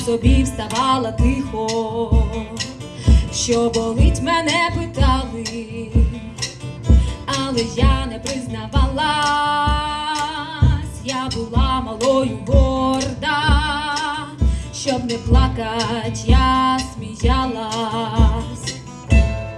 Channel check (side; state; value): both; identical; correlation 1.00